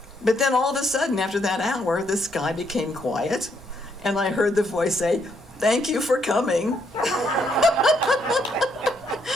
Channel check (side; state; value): both; normal; correlation 0.73